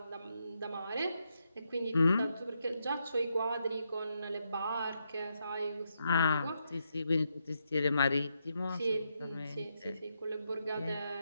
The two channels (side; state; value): both; inverted; correlation -0.81